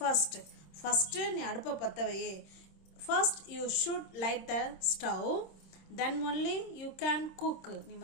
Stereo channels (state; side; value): late; right; 26 ms